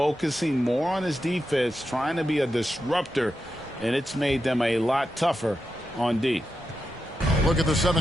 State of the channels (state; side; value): normal; both; correlation 0.88